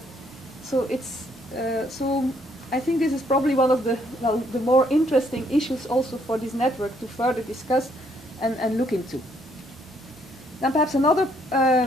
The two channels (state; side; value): normal; both; correlation 0.69